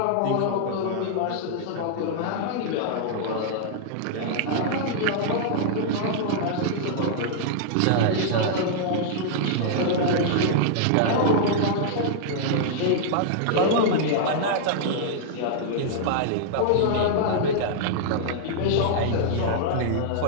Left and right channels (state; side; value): different; both; correlation -0.01